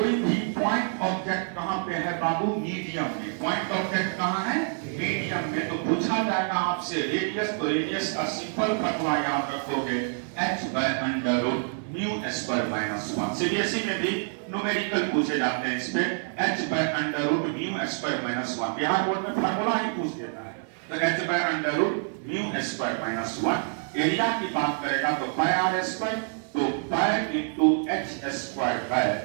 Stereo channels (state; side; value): silent; left; 60 dB below the other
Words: भी पॉइंट ऑब्जेक्ट कहां पे है बाबू? मीडियम में। पॉइंट ऑब्जेक्ट कहां है? मीडियम में। तो पूछा जाएगा आपसे रेडियस, तो रेडियस का सिंपल फॉर्मूला याद रखोगे h by under root mu square minus 1। CBSE में भी न्यूमेरिकल पूछे जाते हैं इस पे। h by under root mu square minus 1 Bihar board में फॉर्मूला ही पूछ देता है। तो h by under root mu square minus 1। Area की बात करेगा तो पाई आर स्क्वायर, तो pi into h square by